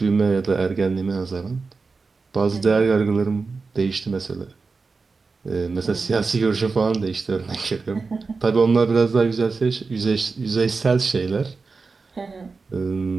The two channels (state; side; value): quieter; left; 4.3 dB